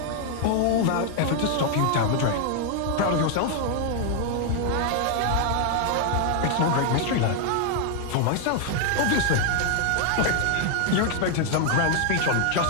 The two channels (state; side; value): different; both; correlation 0.00